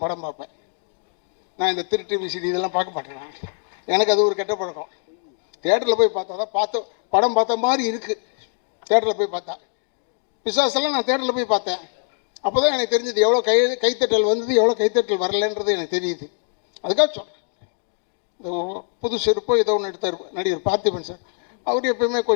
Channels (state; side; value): silent; right; 62 dB below the other